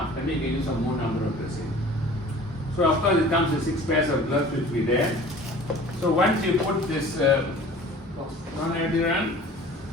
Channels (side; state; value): both; normal; correlation 0.45